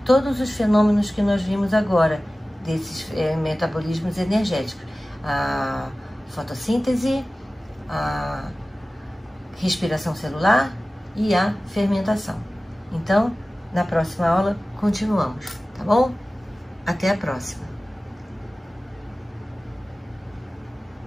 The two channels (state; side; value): normal; both; correlation 0.97